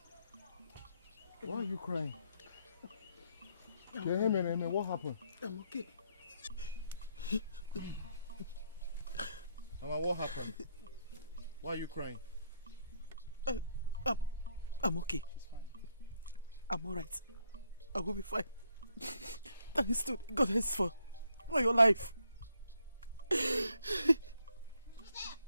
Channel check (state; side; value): inverted; both; correlation -0.73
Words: Why are you crying? What happened? I'm okay. Mama, what happened? Why are you crying? I'm okay. I'm alright. I will be fine. Thanks to the goddess for your life.